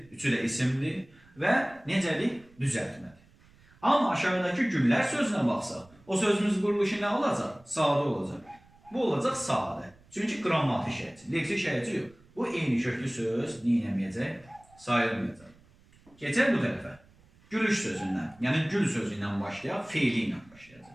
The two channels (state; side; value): noise; right; rumble, 28 dB below the sound